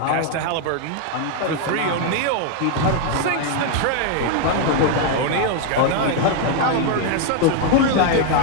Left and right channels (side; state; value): both; different; correlation 0.00